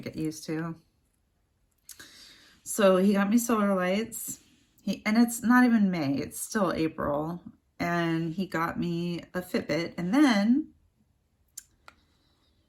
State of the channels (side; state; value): both; identical; correlation 1.00